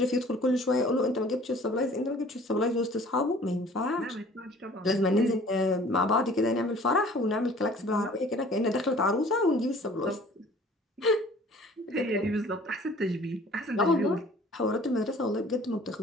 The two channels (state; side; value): normal; both; correlation 0.50